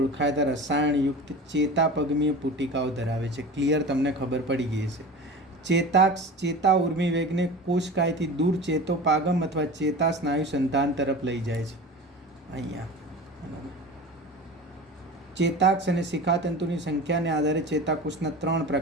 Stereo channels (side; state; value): both; normal; correlation 0.34